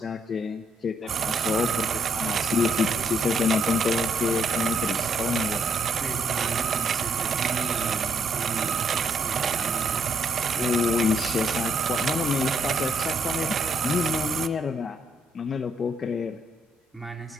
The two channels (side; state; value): both; normal; correlation 0.73